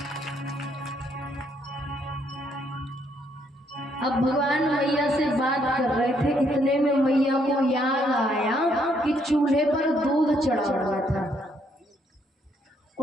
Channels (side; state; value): both; normal; correlation 0.71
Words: अब भगवान मैया से बात कर रहे थे, इतने में मैया को याद आया कि चूल्हे पर दूध चढ़ा हुआ था,